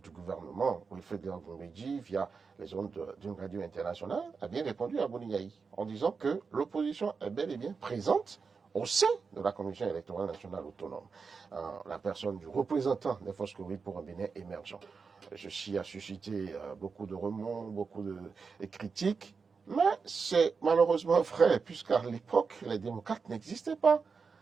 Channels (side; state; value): left; quieter; 5.1 dB